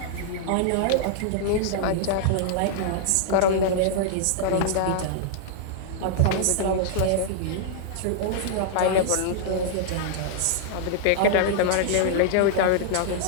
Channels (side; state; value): both; different; correlation -0.01